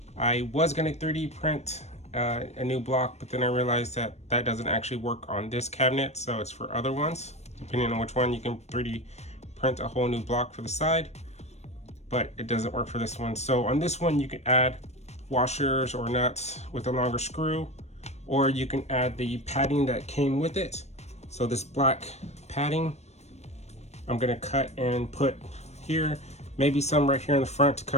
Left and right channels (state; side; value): late; right; 0.32 ms